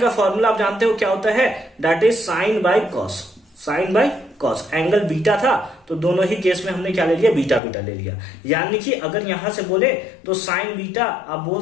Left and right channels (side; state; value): right; drops out; at 7.6 s